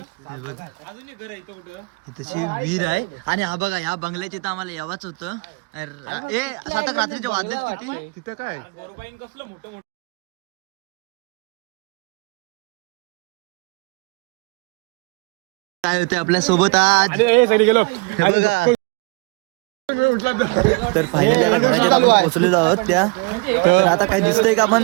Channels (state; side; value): quieter; left; 28.9 dB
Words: हे बघा इथची विहीर आहे आणि हा बघा या बंगल्याचे तर आम्हाला यावाच होतं. ए सातक रात्रीचे वाजलेत किती तिथं काय काय होते आपल्या सोबत आज हे बघा. तर फायनली आता घराच्या आपण पोहोचलेलो आहोत त्या. तर आता काय दिसतंय का आपण